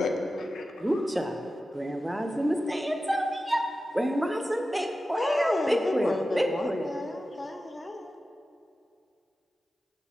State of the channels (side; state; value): both; normal; correlation 0.93